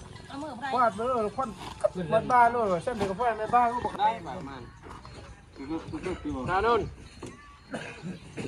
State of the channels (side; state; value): both; identical; correlation 1.00